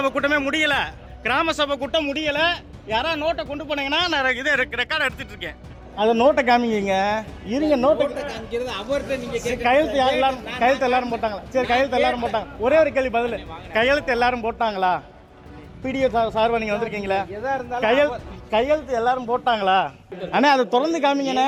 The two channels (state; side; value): identical; both; correlation 1.00